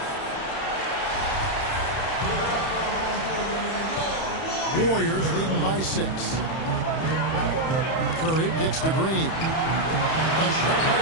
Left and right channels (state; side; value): late; right; 31 ms